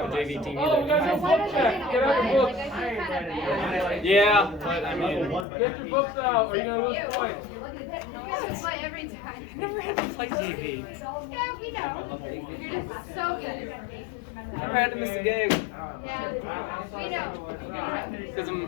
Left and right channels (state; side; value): drops out; right; at 5.5 s